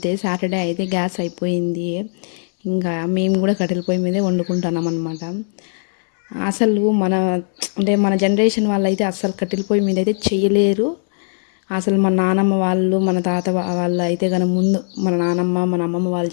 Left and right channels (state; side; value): silent; right; digital silence